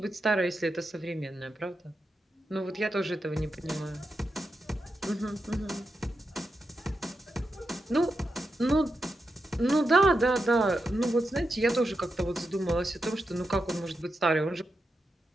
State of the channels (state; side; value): normal; both; correlation 0.87